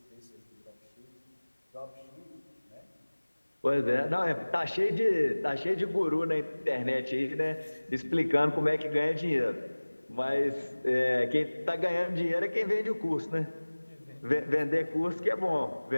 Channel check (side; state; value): both; inverted; correlation -1.00